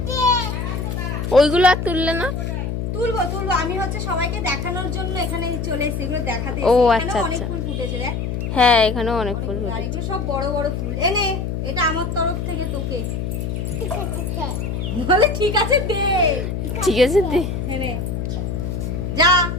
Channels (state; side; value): noise; left; hum, 3 dB below the sound